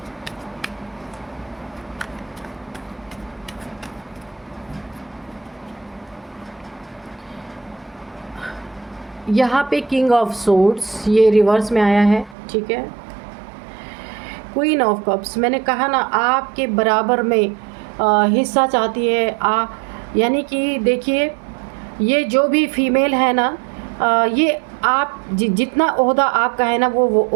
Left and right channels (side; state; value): left; drops out; at 12.4 s